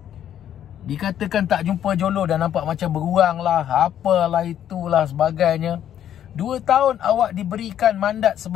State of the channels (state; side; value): quieter; right; 10.4 dB